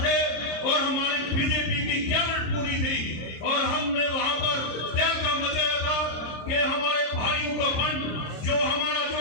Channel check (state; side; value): late; right; 26 ms